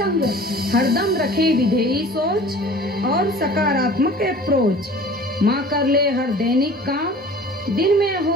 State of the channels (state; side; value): normal; both; correlation 0.44